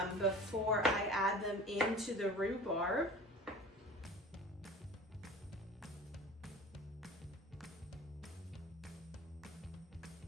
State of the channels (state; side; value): normal; both; correlation 0.40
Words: before I add them into the rhubarb.